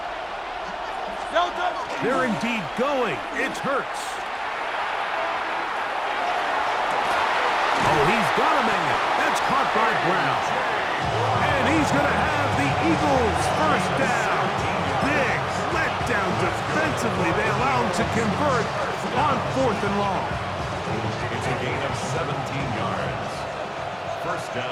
They're indeed going. It's Hurts. Oh, he's got a man. That's caught by Brown. And he's going to have the Eagles' 1st down. Big letdown defensively. They allow him to convert on 4th and long. It's a gain of 17 yards. 1st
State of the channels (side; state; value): both; identical; correlation 1.00